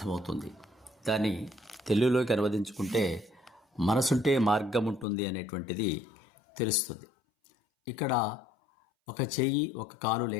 దాన్ని తెలుగులోకి అనువదించుకుంటే మనసుంటే మార్గం ఉంటుంది అనేటువంటిది తెలుస్తుంది. ఇక్కడ ఒక చెయ్యి ఒక కాలు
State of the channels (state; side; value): drops out; right; at 5.1 s